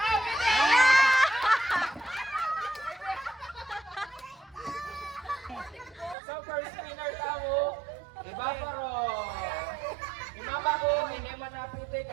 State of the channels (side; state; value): left; drops out; at 6.2 s